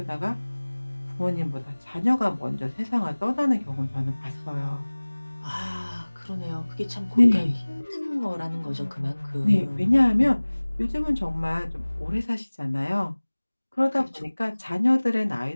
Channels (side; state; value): both; inverted; correlation -1.00